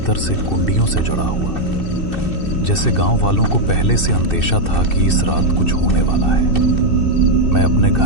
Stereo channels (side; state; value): right; late; 2.6 ms